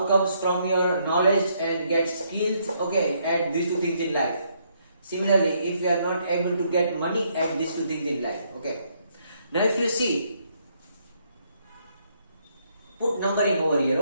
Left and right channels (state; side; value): inverted; both; correlation -0.72